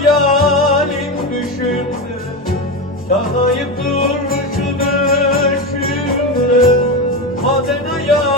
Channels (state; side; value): normal; both; correlation 0.18